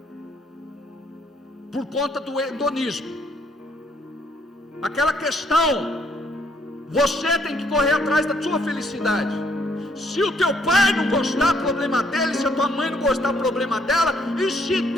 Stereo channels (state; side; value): normal; both; correlation 0.69